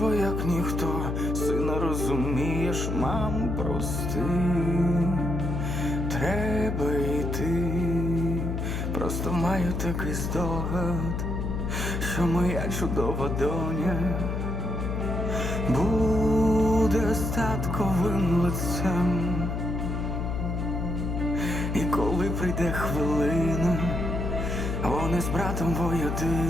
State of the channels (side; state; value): left; noise; hum, 2 dB below the sound